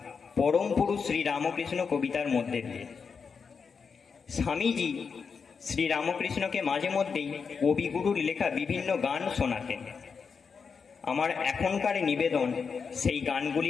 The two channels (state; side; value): quieter; right; 5.7 dB